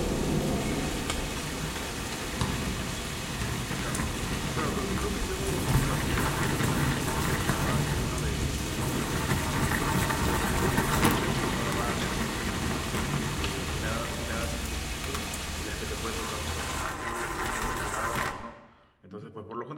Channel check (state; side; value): identical; both; correlation 1.00